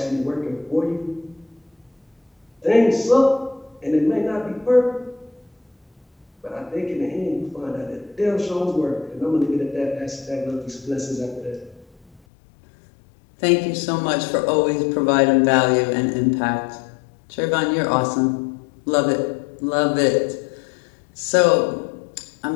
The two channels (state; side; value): drops out; right; at 12.2 s